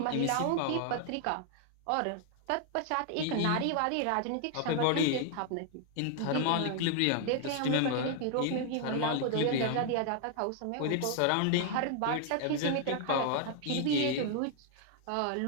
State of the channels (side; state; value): both; different; correlation 0.00